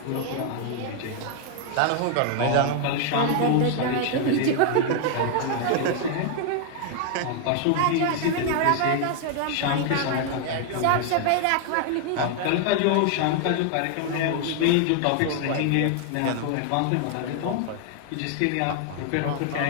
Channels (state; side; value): different; both; correlation 0.00